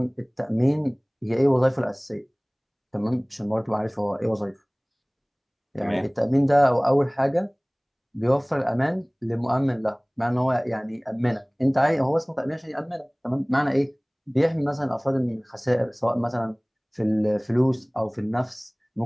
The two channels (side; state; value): both; identical; correlation 1.00